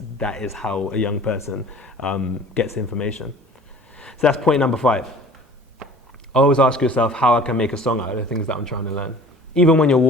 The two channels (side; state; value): both; normal; correlation 0.47